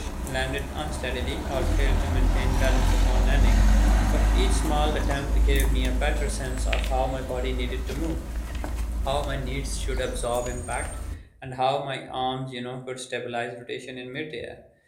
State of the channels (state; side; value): identical; both; correlation 1.00